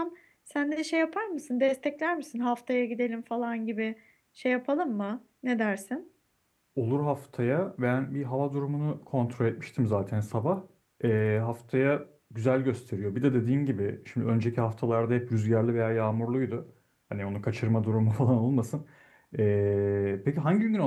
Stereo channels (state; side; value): identical; both; correlation 1.00